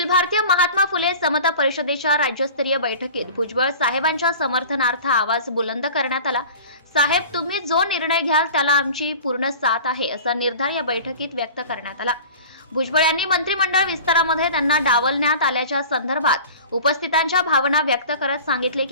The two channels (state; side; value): inverted; both; correlation -0.39